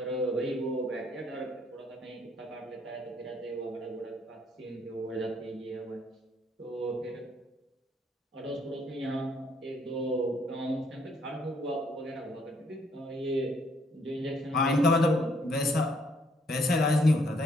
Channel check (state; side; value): normal; both; correlation 0.68